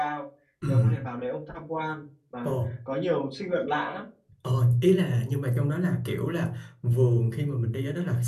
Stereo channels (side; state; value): both; identical; correlation 1.00